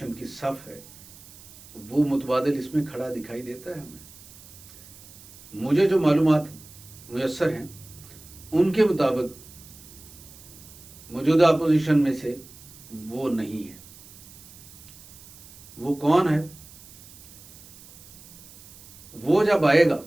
की सफ़ है वो मुतबादल इसमें खड़ा दिखाई देता है हमें? मुझे जो मालूमात मुयस्सर हैं उनके मुताबिक मौजूदा अपोजिशन में से वो नहीं है। वो कौन है? वो जब आएगा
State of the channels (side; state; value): right; noise; hiss, 20 dB below the sound